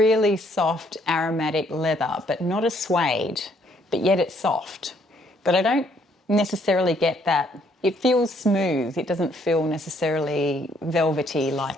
soft aromatic leather, but not a suede, but yet it's soft. But I don't necessarily get that. It feels smooth. It doesn't feel necessarily velvety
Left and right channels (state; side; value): normal; both; correlation 0.67